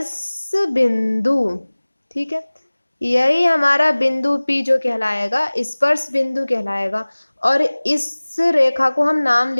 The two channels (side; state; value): both; inverted; correlation -1.00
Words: बिंदु। ठीक है, यही हमारा बिंदु P जो कहलाएगा स्पर्श बिंदु कहलाएगा, और इस रेखा को हम नाम